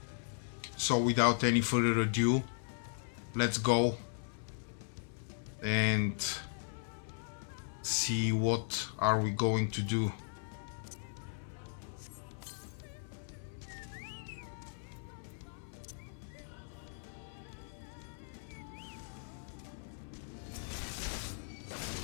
So without any further ado, let's go and see what are we going to do.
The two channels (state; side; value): silent; right; 53 dB below the other